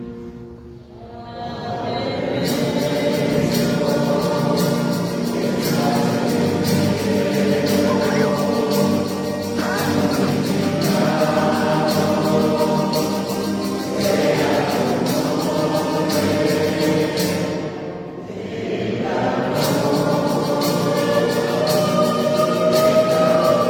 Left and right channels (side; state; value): both; identical; correlation 1.00